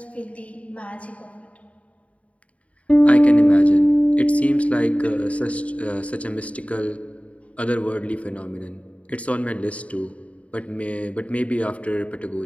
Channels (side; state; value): right; late; 0.066 ms